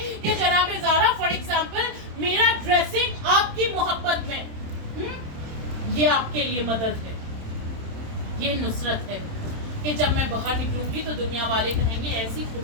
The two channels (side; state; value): left; late; 27 ms